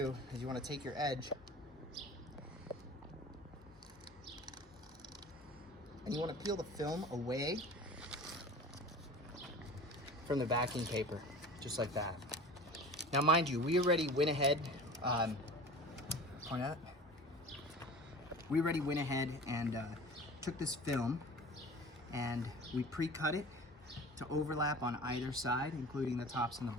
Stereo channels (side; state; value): both; normal; correlation 0.38